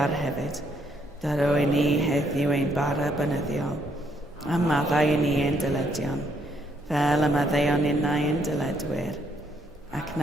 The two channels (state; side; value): normal; both; correlation 0.71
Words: hefyd. Daro i ni heddiw ein bara bynyddiol, a maddau i ni ein dyledion, fel y maddeuon innau ein dyledwyr, ac